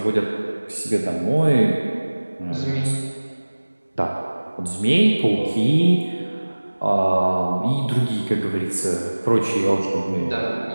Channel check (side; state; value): both; inverted; correlation -1.00